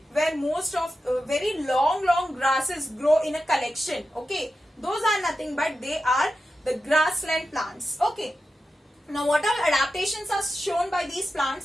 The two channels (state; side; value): normal; both; correlation 0.91